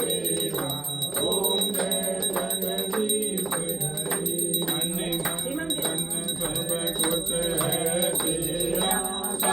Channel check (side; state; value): left; quieter; 3.4 dB